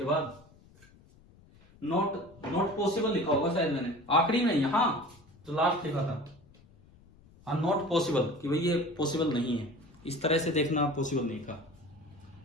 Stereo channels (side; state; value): left; noise; rumble, 26 dB below the sound